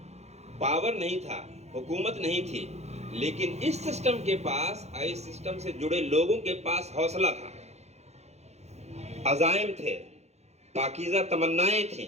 پاور نہیں تھا، حکومت نہیں تھی، لیکن اس سسٹم کے پاس، اس سسٹم سے جڑے لوگوں کے پاس حوصلہ تھا، عزائم تھے، پاکیزہ تمنائیں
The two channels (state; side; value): late; left; 0.32 ms